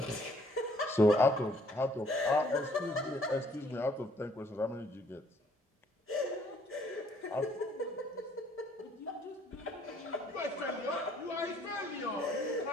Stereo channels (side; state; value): both; normal; correlation 0.63